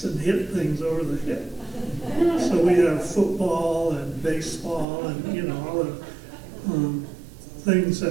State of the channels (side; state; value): left; drops out; at 4.9 s